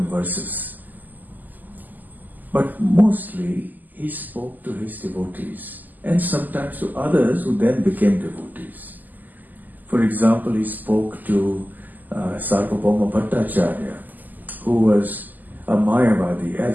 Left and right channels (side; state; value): left; late; 0.084 ms